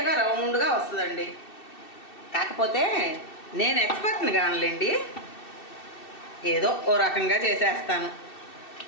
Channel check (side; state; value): right; late; 2.7 ms